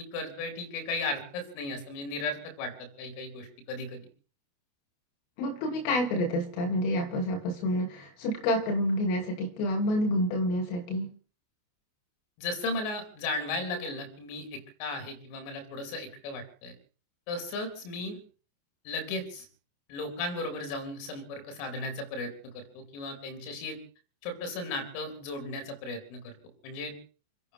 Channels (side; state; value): right; late; 28 ms